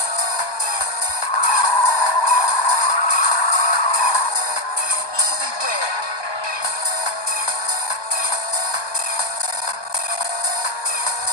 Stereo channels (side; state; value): right; late; 1.2 ms